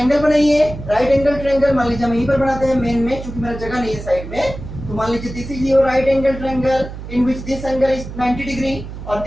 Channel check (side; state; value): right; noise; hum, 11 dB below the sound